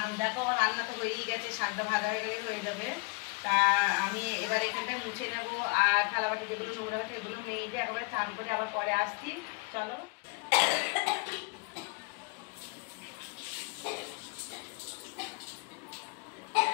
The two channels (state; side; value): quieter; right; 29.0 dB